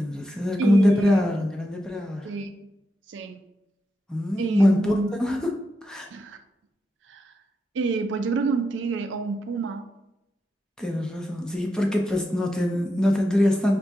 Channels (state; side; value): normal; both; correlation 0.87